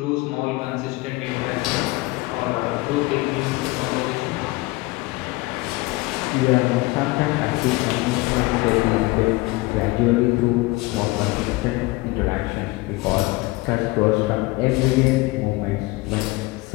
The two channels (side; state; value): right; quieter; 21.8 dB